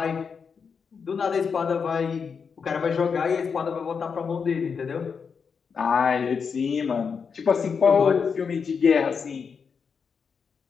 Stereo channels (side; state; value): right; quieter; 6.0 dB